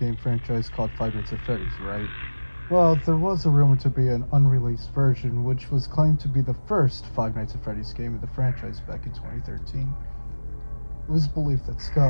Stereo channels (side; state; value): both; inverted; correlation -1.00